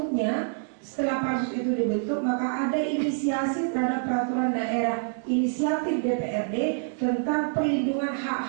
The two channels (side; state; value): left; silent; digital silence